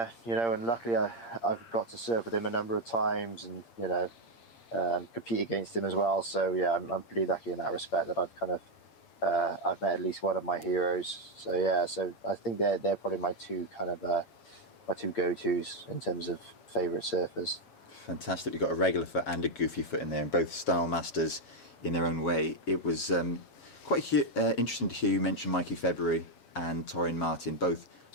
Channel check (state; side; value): late; right; 8.7 ms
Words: luckily I've got to surf with him a number of times and compete against him as well. So yeah, I'm pretty lucky in that respect that I've kind of I've met at least one of my heroes. So yeah, so I think they're probably my two go-tos in terms of favourite surfers. Fantastic. You've got a regular foot and a goofy foot in there, and both style masters in their own way. It was quite interesting to hear you mention Mikey February and Torren Martin. Both